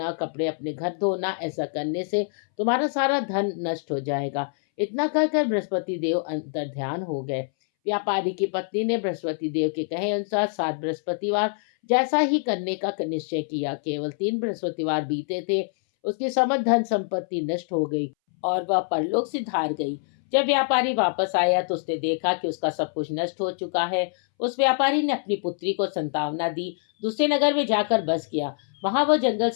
कपड़े अपने घर धोना। ऐसा करने से तुम्हारा सारा धन नष्ट हो जाएगा। इतना कहकर बृहस्पति देव अंतर ध्यान हो गए। व्यापारी की पत्नी ने बृहस्पति देव के कहे अनुसार 7 बृहस्पतिवार जैसा ही करने का निश्चय किया। केवल 3 बृहस्पतिवार बीते थे, उसकी समस्त धन संपत्ति नष्ट हो गई और वह परलोक से धार गई। जब व्यापारी वापस आया तो उसने देखा कि उसका सब कुछ नष्ट हो चुका है। उस व्यापारी ने अपनी पुत्री को संतावना दी, दूसरे नगर में जाकर बस गया। वहां वह जंगल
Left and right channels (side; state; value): right; silent; 62 dB below the other